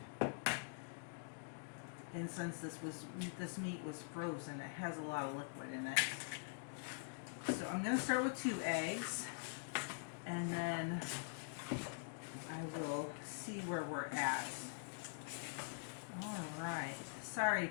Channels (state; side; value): silent; right; digital silence